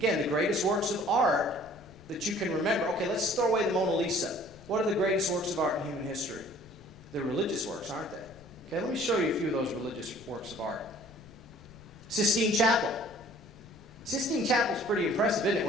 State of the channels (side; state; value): left; noise; rumble, 21 dB below the sound